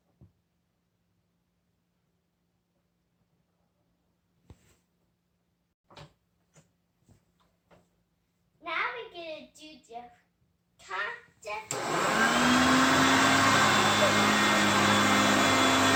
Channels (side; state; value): both; identical; correlation 1.00